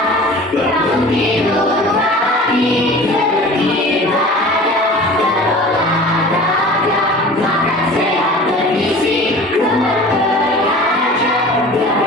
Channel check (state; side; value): normal; both; correlation 0.41